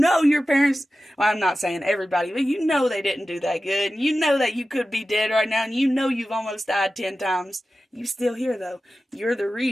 your parents, well, I'm not saying everybody, but you know they didn't do that good. And you know that you could be dead right now, and you know you've almost died 10 times. You still here, though. You're the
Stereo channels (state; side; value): normal; both; correlation 0.94